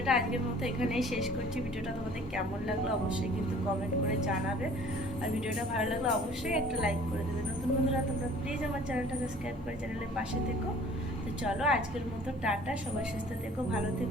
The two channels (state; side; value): normal; both; correlation 0.50